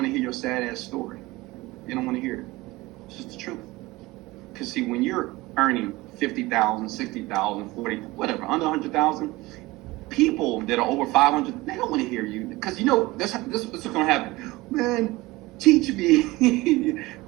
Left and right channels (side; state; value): left; quieter; 20.5 dB